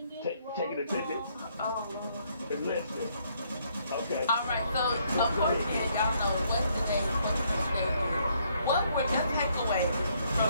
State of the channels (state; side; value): inverted; both; correlation -0.69